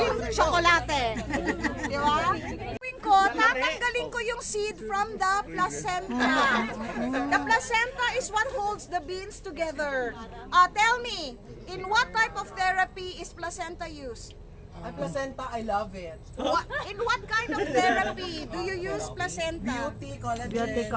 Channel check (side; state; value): both; identical; correlation 1.00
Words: tsokolate. Di ba? Gawin ko, tatanggalin ko yung seed from the placenta. The placenta is what holds the beans together. Tell me, in what type of therapy is placenta used? Ang placenta, I love it. In what kind of therapy do you use placenta? Beauty, collagen.